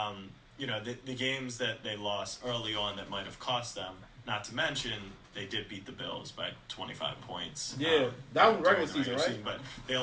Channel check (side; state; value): both; identical; correlation 1.00